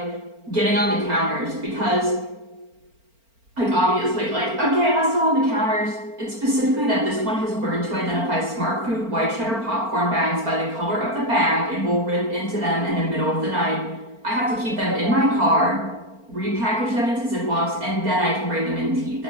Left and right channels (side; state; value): left; late; 4.4 ms